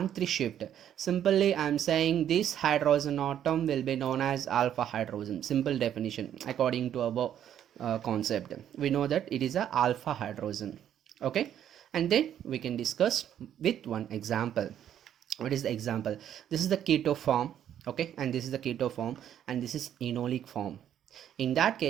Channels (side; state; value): left; quieter; 10.2 dB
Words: shift. Simply, I am saying this hydrogen atom will be known as alpha hydrogen. Simple definition according to our concept. We know that it is a alpha hydrogen. Okay, and then we can discuss with one example. What is the example? This is the keto form. Okay, and this is the keto form, and this is enolic form. In that